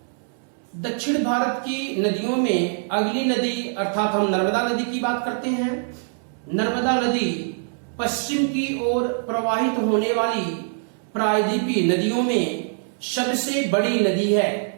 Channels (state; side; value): silent; left; 62 dB below the other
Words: दक्षिण भारत की नदियों में अगली नदी अर्थात हम नर्मदा नदी की बात करते हैं। नर्मदा नदी पश्चिम की ओर प्रवाहित होने वाली प्रायद्वीपीय नदियों में सबसे बड़ी नदी है।